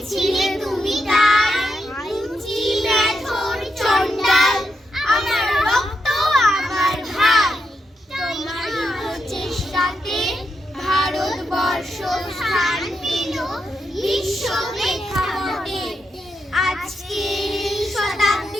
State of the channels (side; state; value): both; normal; correlation 0.83